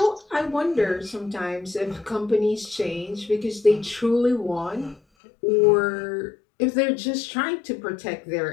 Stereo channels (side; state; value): right; drops out; at 5.0 s